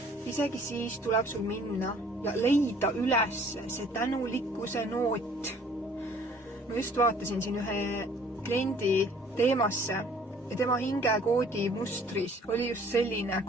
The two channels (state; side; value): normal; both; correlation 0.55